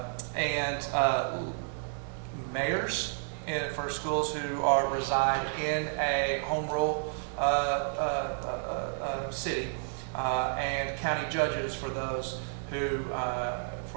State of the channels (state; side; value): silent; left; digital silence